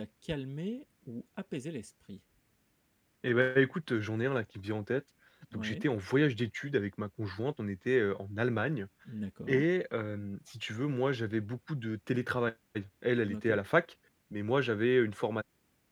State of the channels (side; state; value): both; identical; correlation 1.00